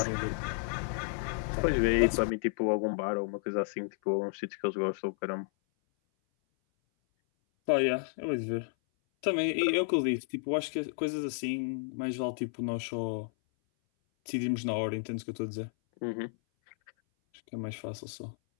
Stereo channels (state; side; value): silent; right; 56 dB below the other